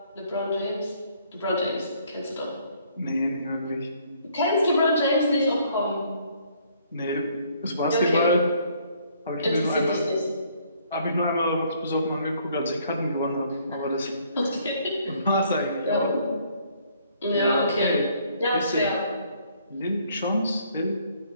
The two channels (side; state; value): both; inverted; correlation -0.64